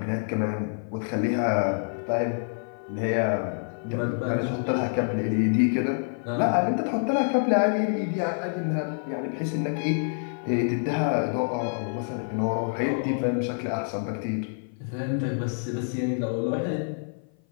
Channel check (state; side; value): silent; right; 56 dB below the other